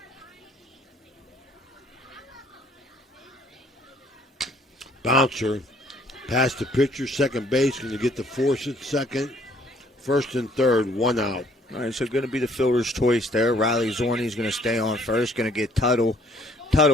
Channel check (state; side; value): normal; both; correlation 0.61